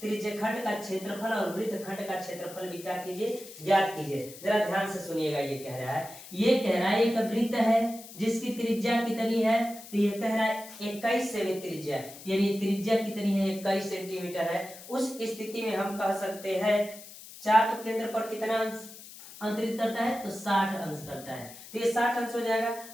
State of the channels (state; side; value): noise; left; hiss, 16 dB below the sound